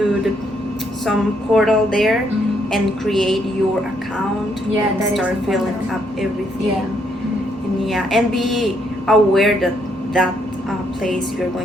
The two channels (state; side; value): normal; both; correlation 0.73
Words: some portal there Mhm. and create your account. Yeah, and that is start filling important. up everything. Yeah. And be aware that place you're